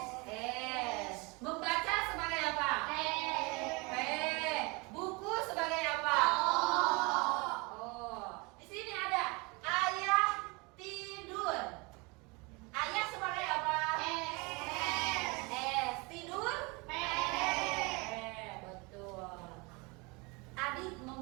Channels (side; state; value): left; quieter; 27.5 dB